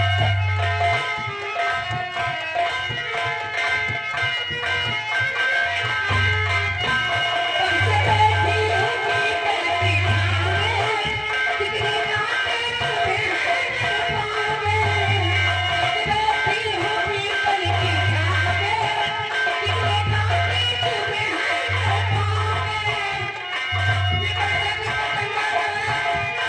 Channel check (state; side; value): identical; both; correlation 1.00